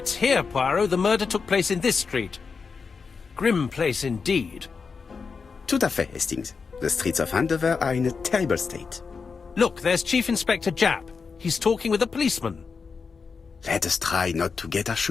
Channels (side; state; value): right; quieter; 5.2 dB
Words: here, Poirot. The murder took place in this street. Grim place indeed. Tout à fait, Hastings. The streets of Andover are in a terrible state. Look, there's Chief Inspector Japp. He's talking with a policeman. Let us try not to get our